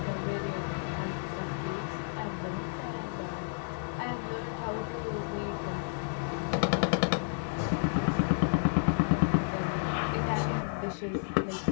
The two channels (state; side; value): silent; right; digital silence